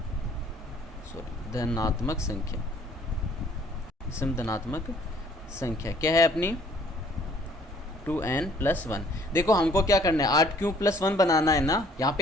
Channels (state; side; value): normal; both; correlation 0.59